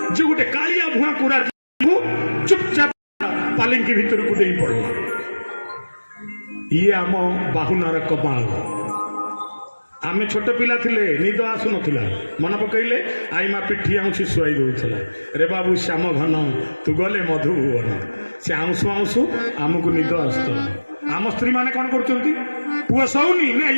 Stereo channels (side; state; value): both; inverted; correlation -1.00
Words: ଯେ ଗୋଟେ କାଳିଆ ଭୁଆଁକୁ ଚୁପଚାପ ପାଲିଙ୍କି ଭିତରକୁ ଦେଇ ପଡ଼ିଲା। ଇଏ ଆମ ବାହୁନାର କମାଲ। ଆମେ ଛୋଟ ପିଲା ଥିଲେ, ନିଦ ଆସୁନଥିଲା, ମନେ ପକେଇଲେ ଆଇମା ପିଠି ଆଉଁସି ଶୁଆଇ ଦଉଥିଲା। ରେ ବାବୁ ଶ୍ୟାମ ଘନ ତୁ ଗଲେ ମଧୁଭୁବନ, ସେ ଆଉଁସୁ ଆଉଁସୁ ଆମକୁ ନିଦ ଆସୁଥିଲା। ଆମ ସ୍ତ୍ରୀ ମାନେ କ'ଣ କରୁଛନ୍ତି? ପୁଅ ଶୋଉନି ନା